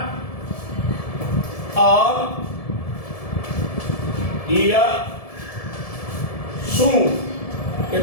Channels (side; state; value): right; late; 1.7 ms